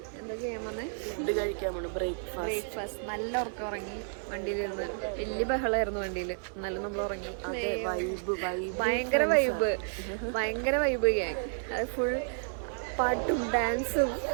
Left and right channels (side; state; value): left; silent; digital silence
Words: എന്താ ചെയ്യാൻ വന്നേ? ഫുഡ് കഴിക്കാൻ വേണം. ബ്രേക്ക്ഫാസ്റ്റ് നല്ല ഉറക്കം ഉറങ്ങി. വണ്ടിയിലിരുന്ന് വലിയ ബഹളമായിരുന്നു വണ്ടിയിൽ. എന്നാലും നമ്മൾ ഉറങ്ങി. ഭയങ്കര വൈബ് ഗ്യാങ്. അത് ഫുൾ പാട്ടും ഡാൻസും